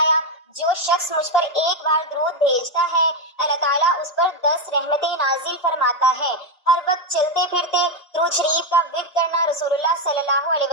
جو شخص مجھ پر ایک بار درود بھیجتا ہے اللہ تعالیٰ اس پر 10 رحمتیں نازل فرماتا ہے۔ ہر وقت چلتے پھرتے درود شریف کا ورد کرنا رسول اللہ صلی اللہ علیہ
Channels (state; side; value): normal; both; correlation 0.06